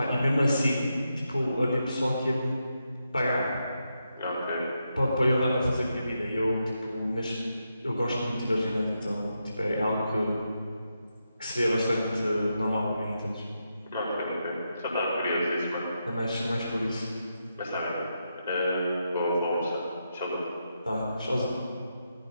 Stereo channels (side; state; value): both; inverted; correlation -0.85